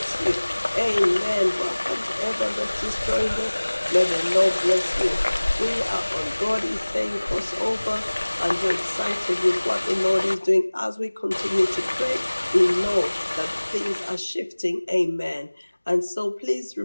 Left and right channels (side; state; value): both; inverted; correlation -1.00